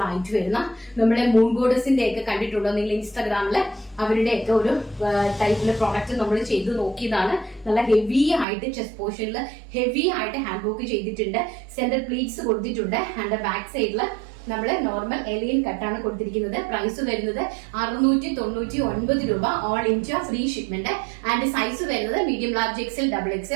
ആയിട്ട് വരുന്ന നമ്മുടെ മൂൺ ഗോഡസിന്റെ ഒക്കെ കണ്ടിട്ടുണ്ടോ നിങ്ങൾ ഇൻസ്റ്റാഗ്രാമില്? അവരുടെ ഒക്കെ ഒരു ടൈപ്പിലെ പ്രോഡക്റ്റ് നമ്മൾ ചെയ്ത് നോക്കിയതാണ്. നല്ല ഹെവി ആയിട്ട് ചെസ്റ്റ് പോർഷനിൽ ഹെവി ആയിട്ട് ഹാൻഡ് വർക്ക് ചെയ്തിട്ടുണ്ട്. സെന്റർ പ്ലീറ്റ്സ് കൊടുത്തിട്ടുണ്ട്. ആൻഡ് ബാക്ക് സൈഡില് നമ്മള് നോർമൽ എലിയൻ കട്ടാണ് കൊടുത്തിരിക്കുന്നത്. പ്രൈസ് വരുന്നത് 699 രൂപ. All India free shipment. And size വരുന്നത് medium, large, XL, double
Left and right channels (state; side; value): drops out; left; at 8.5 s